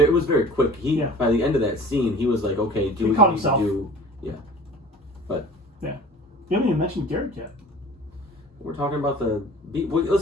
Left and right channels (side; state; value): both; normal; correlation 0.44